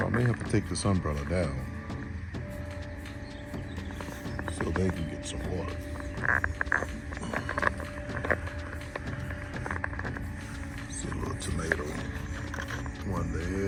I may have to take this umbrella down so they can get some water. See a little tomato. One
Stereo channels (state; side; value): identical; both; correlation 1.00